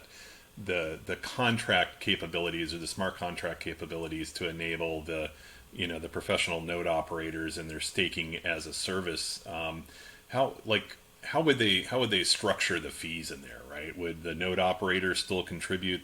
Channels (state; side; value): identical; both; correlation 1.00